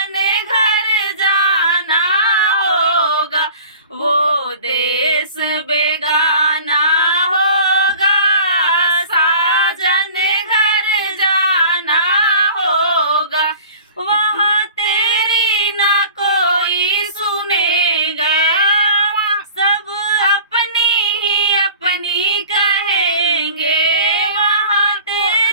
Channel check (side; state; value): both; inverted; correlation -0.44